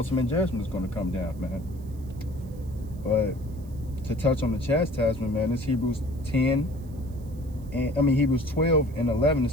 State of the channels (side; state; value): right; noise; hiss, 28 dB below the sound